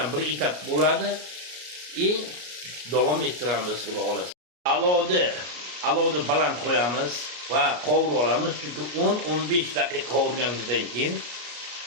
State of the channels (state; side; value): late; left; 33 ms